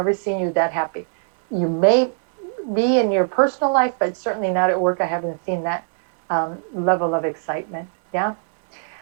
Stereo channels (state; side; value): silent; left; digital silence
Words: seen you that happy. You may be in your personal life, but certainly not at work. I haven't seen that level of excitement. Yeah.